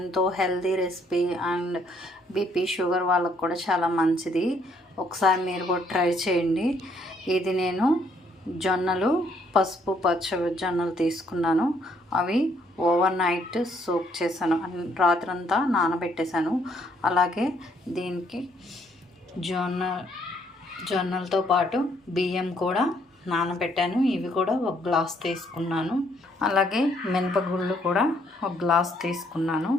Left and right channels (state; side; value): normal; both; correlation 0.68